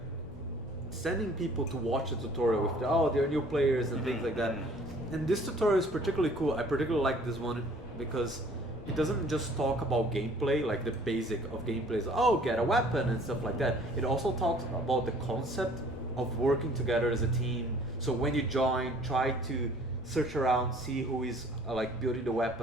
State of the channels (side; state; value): both; normal; correlation 0.55